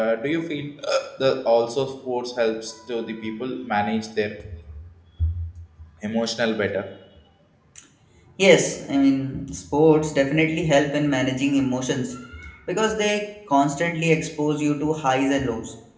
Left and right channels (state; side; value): identical; both; correlation 1.00